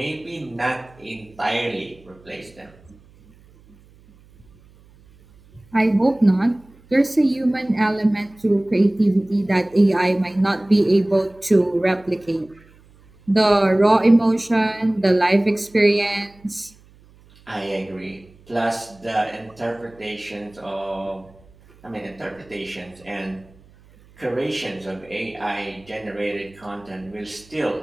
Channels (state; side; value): noise; right; hum, 27 dB below the sound